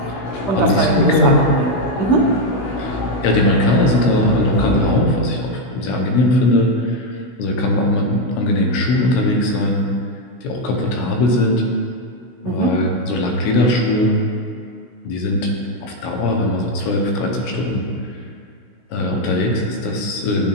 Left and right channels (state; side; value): late; right; 16 ms